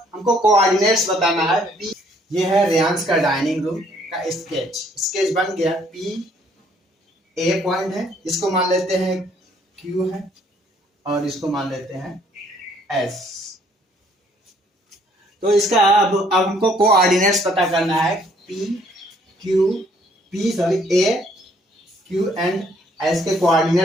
हमको कोऑर्डिनेट्स बताना है। पी, ये है रेयांश का डाइनिंग रूम का स्केच बन गया। पी ए पॉइंट है, इसको मान लेते हैं क्यू है, और इसको मान लेते हैं एस। तो इसका अब हमको कोऑर्डिनेट्स पता करना है। ए क्यू एंड एस के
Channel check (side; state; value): both; normal; correlation 0.64